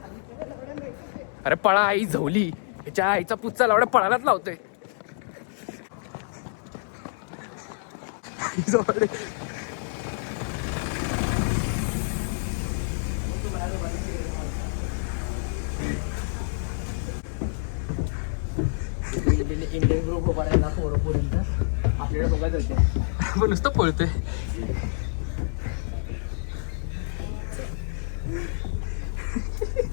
अरे पळा आई झवली. ह्याच्या आईचा पुच्चा लावड्या पळायलाच लावतोय. इंडियन ग्रुप उभारायला पोरपर्यंत आपल्याला बघत होते. पण नुसतं पळतोय.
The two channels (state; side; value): silent; right; digital silence